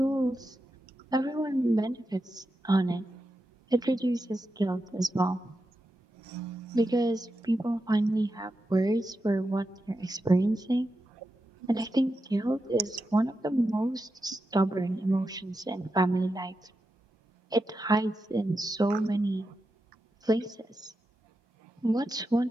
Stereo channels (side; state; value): both; normal; correlation 0.88